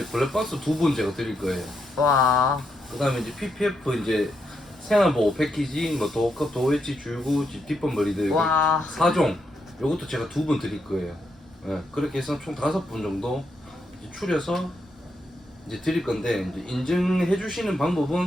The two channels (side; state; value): both; normal; correlation 0.81